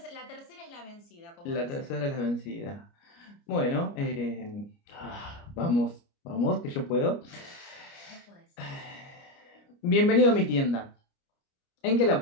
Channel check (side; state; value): right; late; 29 ms